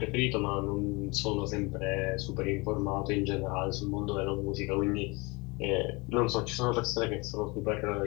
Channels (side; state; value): right; quieter; 26.5 dB